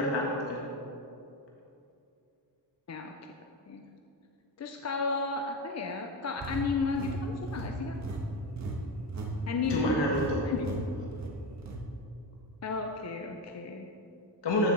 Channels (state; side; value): normal; both; correlation 0.18